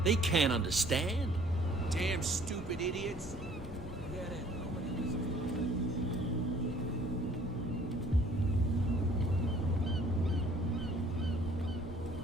They can't understand. Damn stupid idiots. Forget it. Nobody listens.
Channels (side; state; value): both; normal; correlation 0.56